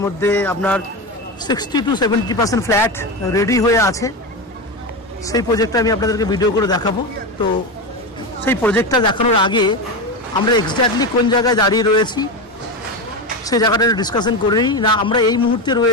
মধ্যে আপনার 60 to 70% ফ্ল্যাট রেডি হয়ে আছে। সেই প্রজেক্টটা আমি আপনাদেরকে ভিডিও করে দেখাবো। তো সেই প্রজেক্টটা দেখানোর আগে আমরা এক্স্যাক্টলি কোন জায়গায় দাঁড়িয়ে রয়েছি সেই জায়গাটা ডিসকাশন করে নিই না। আমরা এই মুহূর্তে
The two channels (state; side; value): normal; both; correlation 0.17